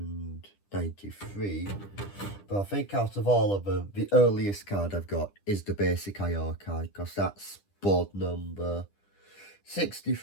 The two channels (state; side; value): late; right; 10 ms